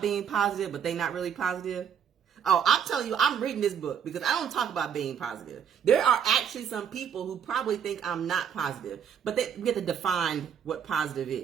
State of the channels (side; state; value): left; quieter; 8.0 dB